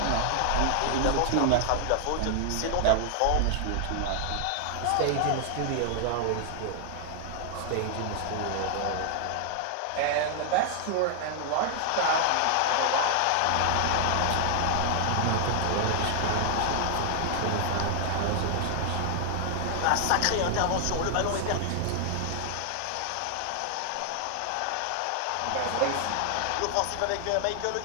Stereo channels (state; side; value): different; both; correlation 0.00